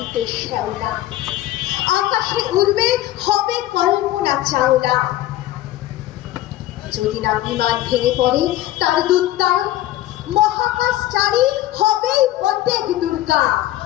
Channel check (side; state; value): right; quieter; 14.8 dB